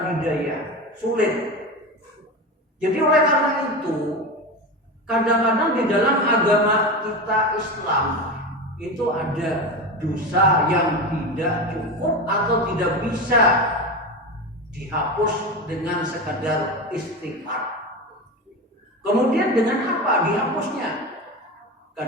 hidayah, sulit. Jadi oleh karena itu, kadang-kadang di dalam agama kita Islam itu ada dosa yang tidak cukup atau tidak bisa dihapus dengan sekadar istighfar. Kemudian dengan apa dihapusnya?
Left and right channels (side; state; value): both; normal; correlation 0.23